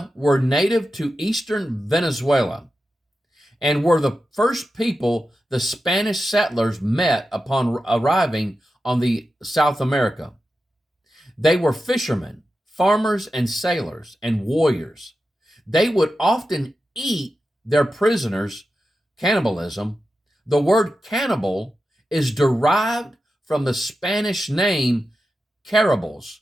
were native to eastern Venezuela and were the first people the Spanish settlers met upon arriving on the South America. They were fishermen, farmers, and sailors, and warriors. They would often eat their prisoners, cannibalism. The word cannibal is derived from the Spanish name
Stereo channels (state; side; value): normal; both; correlation 0.91